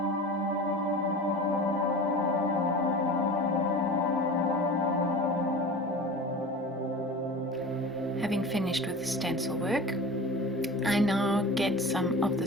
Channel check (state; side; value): normal; both; correlation 0.35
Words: finished with the stencil work, I now get some of the